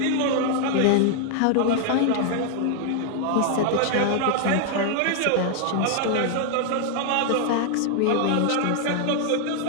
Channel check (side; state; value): both; different; correlation 0.00